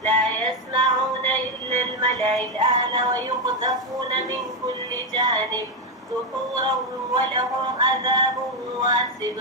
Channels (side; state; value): both; normal; correlation 0.06